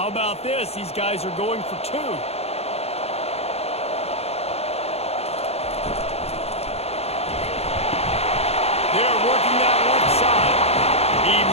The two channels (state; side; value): late; right; 0.30 ms